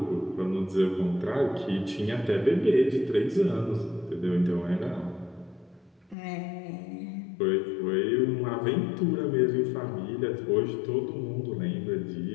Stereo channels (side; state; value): right; drops out; at 6.2 s